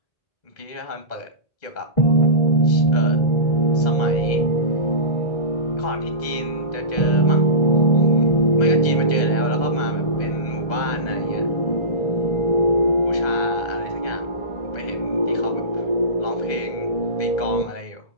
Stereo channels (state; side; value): late; right; 2.0 ms